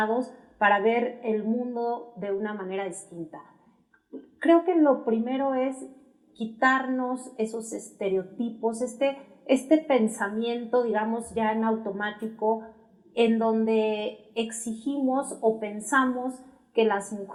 para ver el mundo de una manera distinta. Creo que lo primero es quitarnos esos estereotipos, este pensamiento, digamos, ya en automático, en donde exigimos o pensamos que las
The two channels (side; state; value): both; identical; correlation 1.00